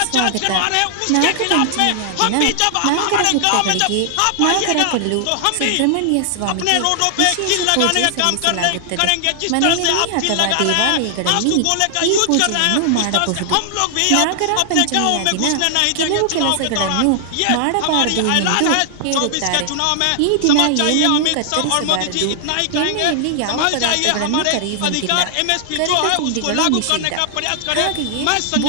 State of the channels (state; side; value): different; both; correlation 0.00